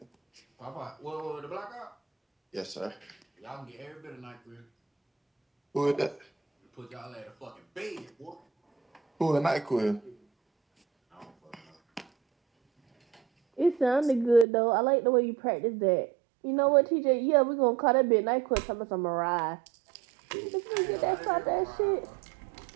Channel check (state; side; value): drops out; left; at 14.5 s